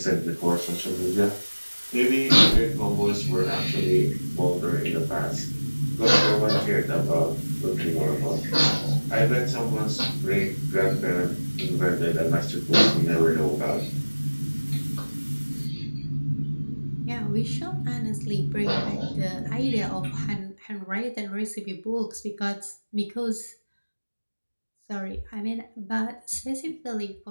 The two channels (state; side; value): inverted; both; correlation -1.00